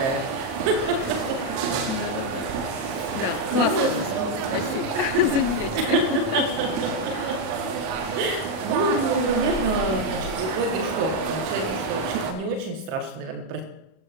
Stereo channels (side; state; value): left; late; 37 ms